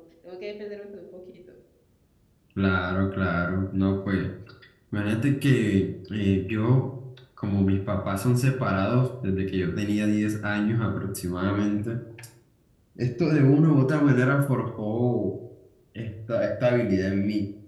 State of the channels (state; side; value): identical; both; correlation 1.00